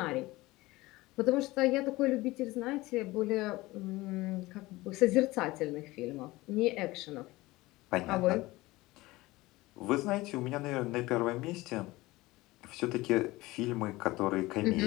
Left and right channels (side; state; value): right; quieter; 19.9 dB